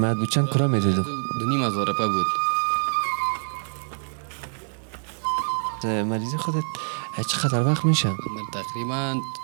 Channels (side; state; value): left; silent; digital silence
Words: بود. چند کرا میدادو؟ 2,500 روپیه بود. مریضی خودت چقدر وقت میشه؟ من تقریبا